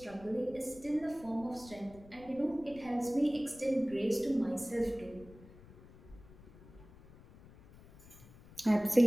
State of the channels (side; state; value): left; noise; rumble, 21 dB below the sound